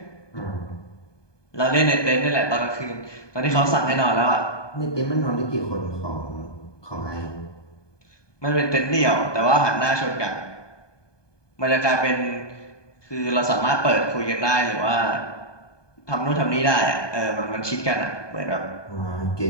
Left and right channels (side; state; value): right; late; 1.2 ms